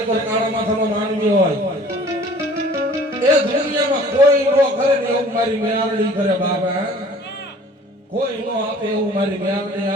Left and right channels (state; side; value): normal; both; correlation 0.50